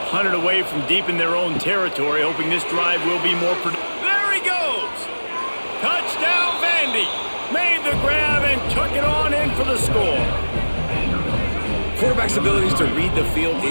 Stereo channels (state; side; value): inverted; both; correlation -1.00